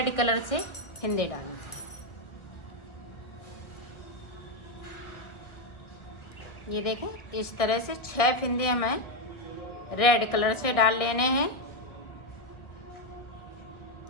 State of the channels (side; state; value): right; late; 1.4 ms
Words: कलर से फिंदे डालूंगी। ये देखें, इस तरह से 6 फिंदे हमें रेड कलर से डाल लेने हैं।